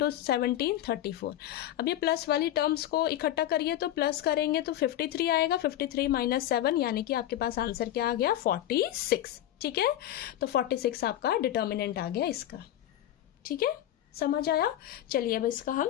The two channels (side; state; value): right; quieter; 12.7 dB